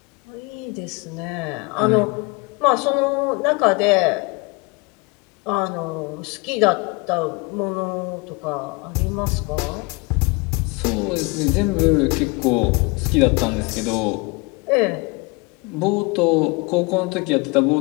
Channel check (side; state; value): right; quieter; 27.2 dB